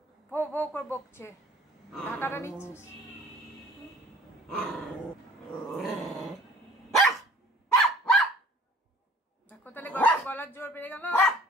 ভো ভো করে বকছে। ঢাকাটা নিচ্ছিস? দেখো তাহলে গলার জোর বেড়ে গেল।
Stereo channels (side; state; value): both; normal; correlation 0.51